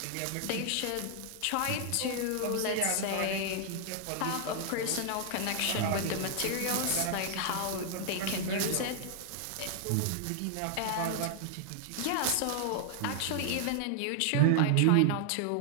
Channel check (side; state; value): both; different; correlation 0.00